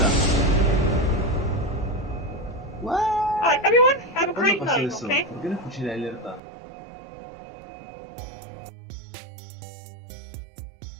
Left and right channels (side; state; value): left; drops out; at 6.4 s